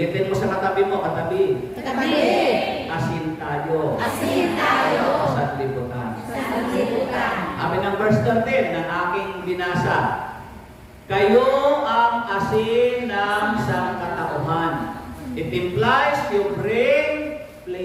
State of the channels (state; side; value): identical; both; correlation 1.00